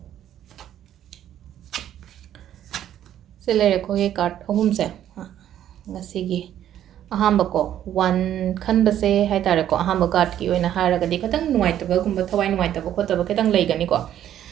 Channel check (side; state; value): left; quieter; 11.1 dB